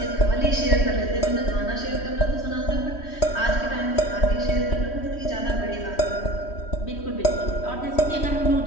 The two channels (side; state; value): right; late; 3.1 ms